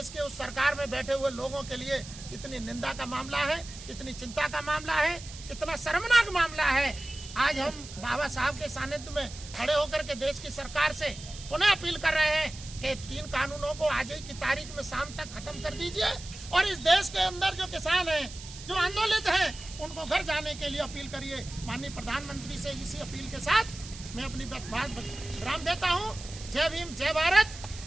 के उस सरकार में बैठे हुए लोगों के लिए कितनी निंदा का मामला है, कितनी चिंता का मामला है, कितना शर्मनाक मामला है। आज हम बाबा साहब के सानिध्य में खड़े होकर के देश की सरकार से पुनः अपील कर रहे हैं कि 3 कानूनों को आज ही की तारीख में शाम तक खत्म कर दीजिए और इस देश के अंदर जो किसान हैं, जो आंदोलित हैं, उनको घर जाने के लिए अपील करिए। माननीय प्रधानमंत्री से इसी अपील के साथ मैं अपनी बात विराम देता हूँ। जय भीम, जय भारत,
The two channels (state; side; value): noise; right; hiss, 14 dB below the sound